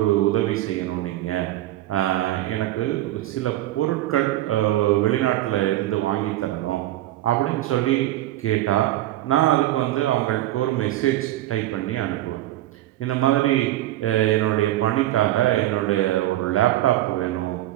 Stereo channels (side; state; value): left; quieter; 15.0 dB